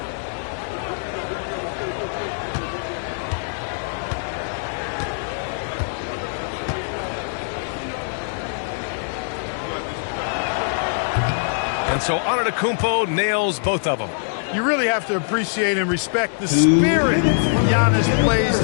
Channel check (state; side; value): silent; right; digital silence